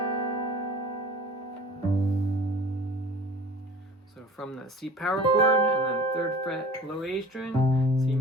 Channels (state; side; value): normal; both; correlation 0.44